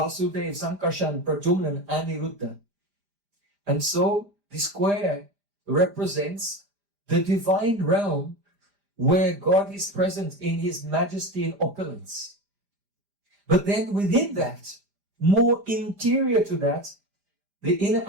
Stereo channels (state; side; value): late; left; 5.0 ms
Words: Sankarshan, Pradyumna, and Aniruddha. And so the square represents the divine realm where God is present in his majesty and opulence. But then within that, more interior to that, the inner